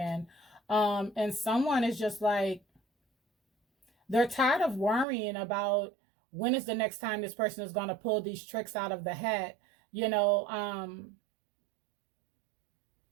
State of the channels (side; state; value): left; drops out; at 5.1 s